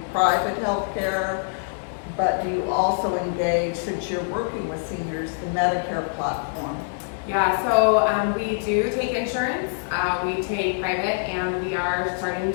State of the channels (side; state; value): right; silent; 62 dB below the other